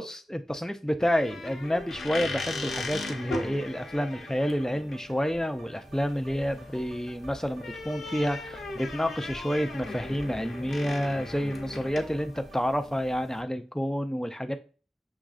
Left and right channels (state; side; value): normal; both; correlation 0.95